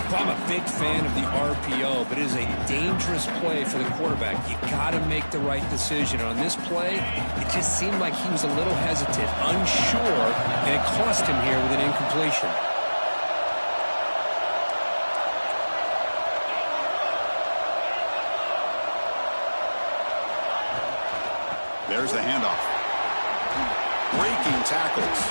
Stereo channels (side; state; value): both; inverted; correlation -1.00